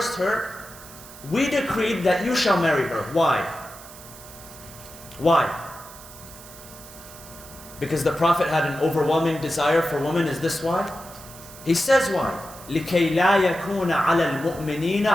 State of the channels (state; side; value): noise; right; hiss, 18 dB below the sound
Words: her, we decreed that you shall marry her. Why? Why? Because the Prophet had an overwhelming desire for women. Is this why? He says why? لِكَيْ لَا يَكُونَ عَلَى الْمُؤْمِنِينَ